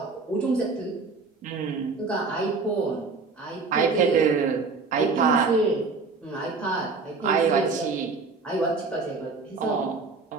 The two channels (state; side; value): quieter; left; 4.2 dB